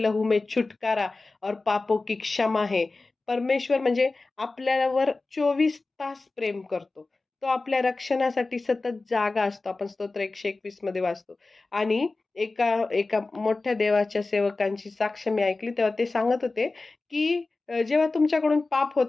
लहू में छुटकारा और पापों की क्षमा है. परमेश्वर म्हणजे आपल्यावर 24 तास प्रेम करतो. तो आपल्या रक्षणासाठी सतत जागा असतो. आपण स्तोत्र 121 मध्ये वाचतो. आणि एका एका मोठ्या देवाच्या सेवकांची साक्ष मी ऐकली, तेव्हा ते सांगत होते, की जेव्हा तुमच्याकडून पाप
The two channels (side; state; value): right; quieter; 3.5 dB